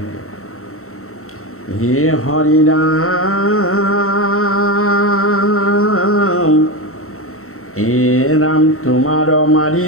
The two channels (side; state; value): right; late; 0.63 ms